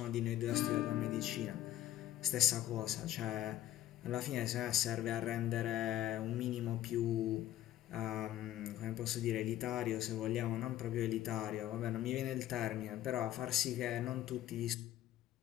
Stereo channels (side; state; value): right; quieter; 13.1 dB